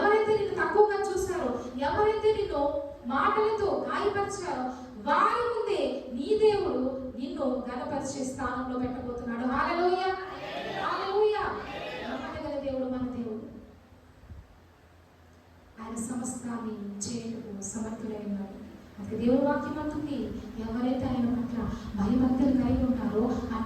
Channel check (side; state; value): both; identical; correlation 1.00